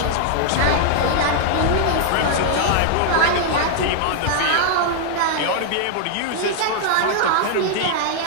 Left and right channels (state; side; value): different; both; correlation -0.01